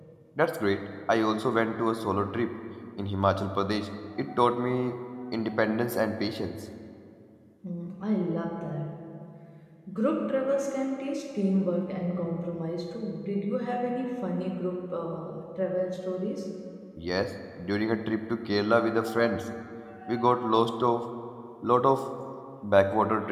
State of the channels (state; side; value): identical; both; correlation 1.00